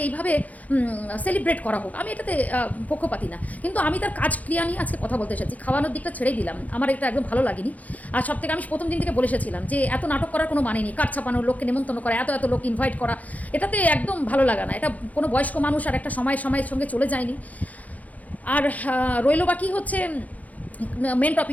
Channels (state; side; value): late; right; 0.075 ms